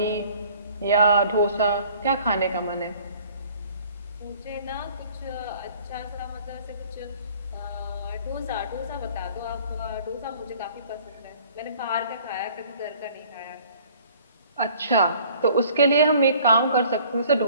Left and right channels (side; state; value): both; inverted; correlation -0.54